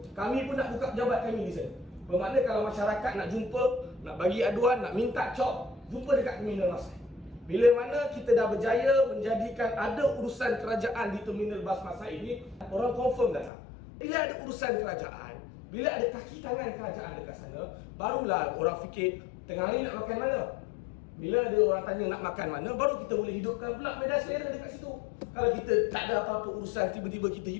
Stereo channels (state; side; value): drops out; right; at 13.5 s